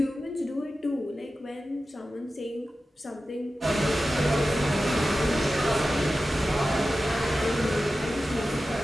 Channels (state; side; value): normal; both; correlation 0.94